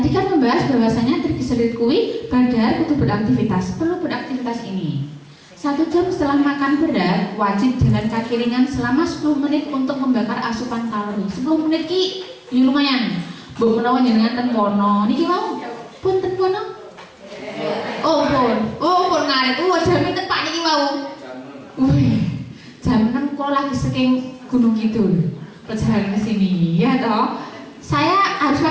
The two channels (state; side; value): identical; both; correlation 1.00